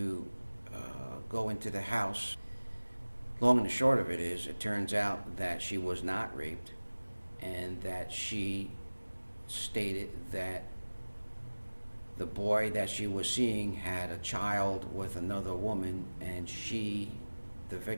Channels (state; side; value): inverted; both; correlation -1.00